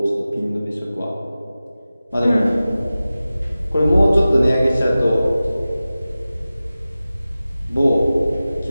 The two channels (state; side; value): inverted; both; correlation -0.96